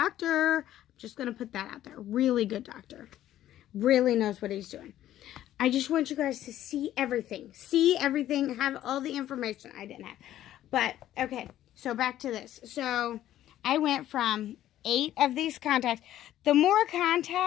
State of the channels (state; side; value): quieter; right; 12.7 dB